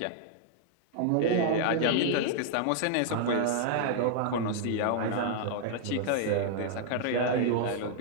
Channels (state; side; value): different; both; correlation -0.01